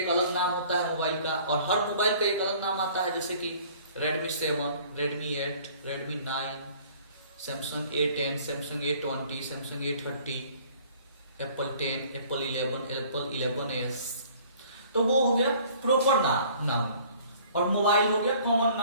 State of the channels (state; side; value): inverted; both; correlation -0.53